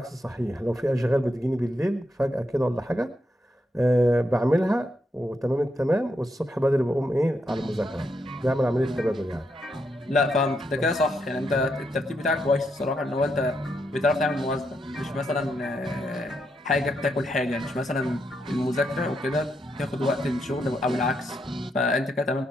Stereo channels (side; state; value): both; normal; correlation 0.80